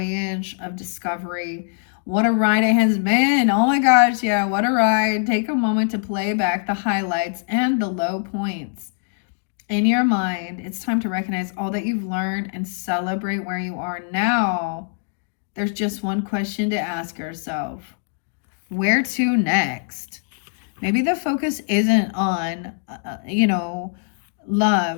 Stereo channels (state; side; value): silent; right; digital silence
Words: of discovery, what a ride it has been. Oh my gosh, yeah, what a ride. Take a moment to play back the highlights and the low points. In your mind, it's time to recognize all that you've learned and celebrate where you are now. There's just one question to ask yourself. Where to next? Maybe the focus isn't on,